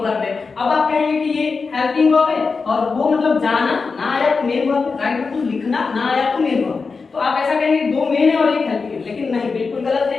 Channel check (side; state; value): right; quieter; 4.6 dB